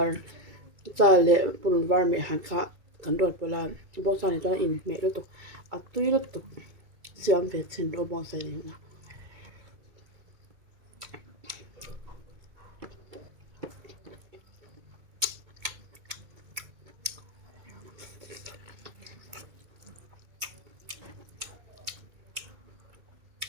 cha le purun var me han kha kan rot pawla bawng sa ni chuan in meh lutuk a tui lutuk siam ve chin ro bawng sa ni na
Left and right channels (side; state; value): left; late; 2.2 ms